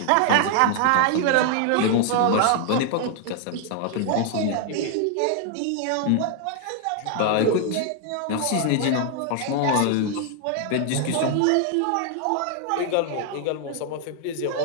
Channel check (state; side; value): different; both; correlation 0.00